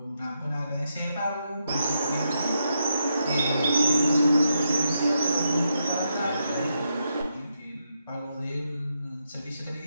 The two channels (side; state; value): both; inverted; correlation -0.82